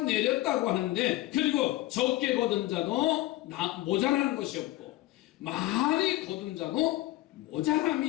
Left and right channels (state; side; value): quieter; right; 17.0 dB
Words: 내렸다고 하는데, 그리고 적게 거둔 자도 모자라는 것이 없고 많이 거둔 자도